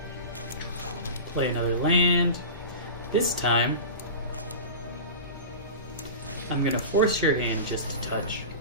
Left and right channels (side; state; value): both; inverted; correlation -0.31